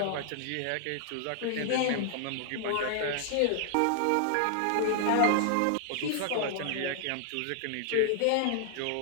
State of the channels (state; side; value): different; both; correlation -0.01